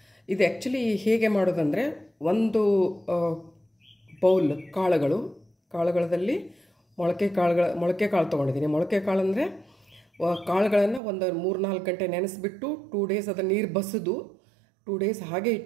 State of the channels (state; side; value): drops out; left; at 11.0 s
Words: ಇದು ಆ್ಯಕ್ಚುಲಿ ಹೇಗೆ ಮಾಡೋದಂದರೆ, ಒಂದು ಬೌಲ್ ಕಾಳುಗಳಲ್ಲಿ ಮೊಳಕೆ ಕಾಳು ತೊಗೊಂಡಿದ್ದೀನಿ. ಮೊಳಕೆ ಕಾಳು ಅಂದರೆ ಕಾಳುಗಳನ್ನು ಒಂದು 3-4 ಗಂಟೆ ನೆನೆಸ್ಬಿಟ್ಟು 2 ಡೇಸ್ ಅದನ್ನು ನೀರು ಬಸಿದು 2 ಡೇಸ್ ಹಾಗೆ